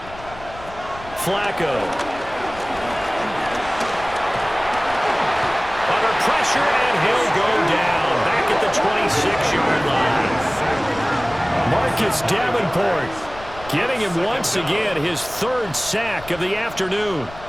Flacco. Under pressure, and he'll go down back at the 26-yard line. Marcus Davenport getting him once again his 3rd sack of the afternoon.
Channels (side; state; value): left; noise; rumble, 17 dB below the sound